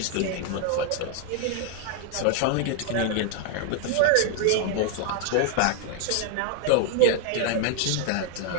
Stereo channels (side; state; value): both; different; correlation 0.00